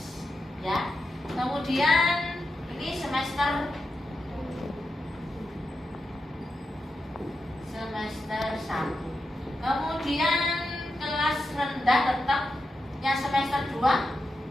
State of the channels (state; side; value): normal; both; correlation 0.88